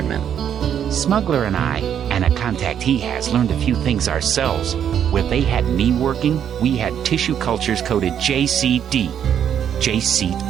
Smuggler and I, and a contact he has, learned a few things ourselves. Where they had me working, we had tissue cultures coded JCD. J.C.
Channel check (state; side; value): quieter; left; 9.1 dB